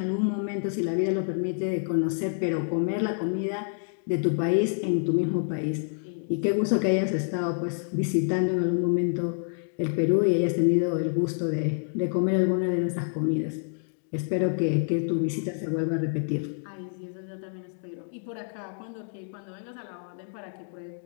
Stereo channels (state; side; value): silent; right; digital silence